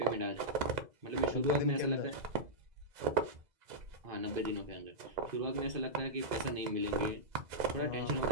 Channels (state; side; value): late; left; 2.0 ms